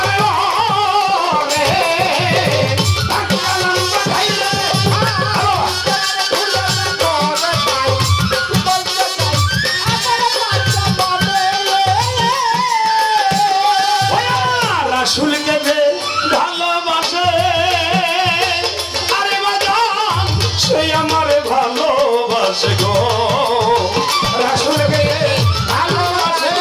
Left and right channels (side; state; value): both; identical; correlation 1.00